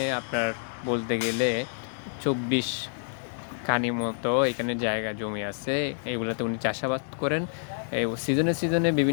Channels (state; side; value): silent; right; digital silence